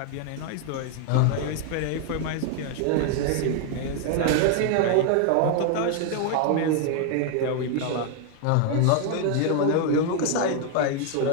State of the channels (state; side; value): different; both; correlation 0.00